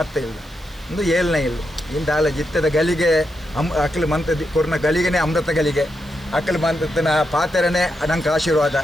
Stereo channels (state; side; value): noise; right; hiss, 27 dB below the sound